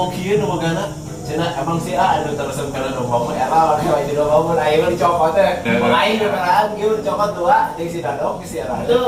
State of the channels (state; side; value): identical; both; correlation 1.00